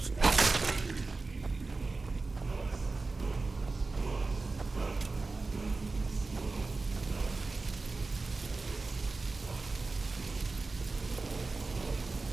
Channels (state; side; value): quieter; left; 3.7 dB